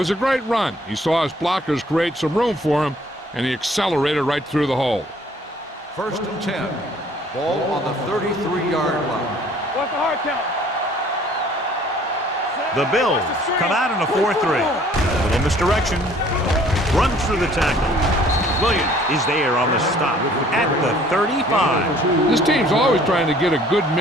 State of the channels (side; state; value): both; normal; correlation 0.56